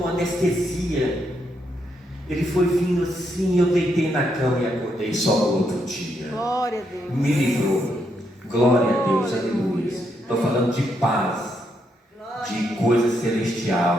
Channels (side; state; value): both; normal; correlation 0.78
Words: anestesia. Ele foi vindo assim, eu deitei na cama e acordei só no outro dia. Glória a Deus. Me livrou. Glória a Deus, aleluia. Estou falando de paz, de coisa